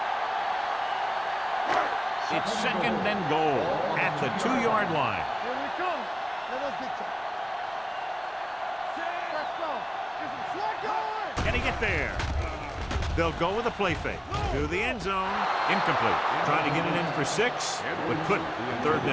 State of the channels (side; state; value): both; identical; correlation 1.00